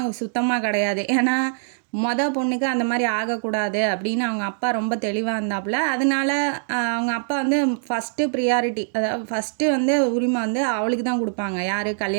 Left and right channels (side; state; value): left; silent; digital silence